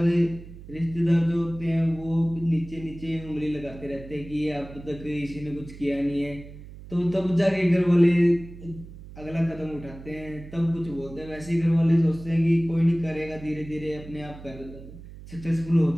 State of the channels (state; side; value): noise; right; hum, 16 dB below the sound